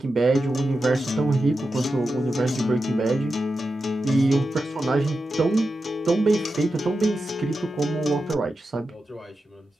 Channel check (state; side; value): normal; both; correlation 0.90